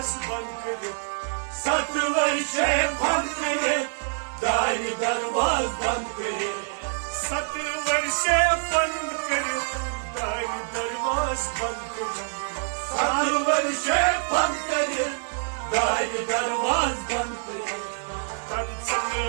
बंद करित 7 वर्षे बंद करित दार दरवाज बंद करित 7 वर्षे बंद करित दार दरवाज बंद करित 7 वर्षे बंद करित दार दरवाज बंद करित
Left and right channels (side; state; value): left; silent; digital silence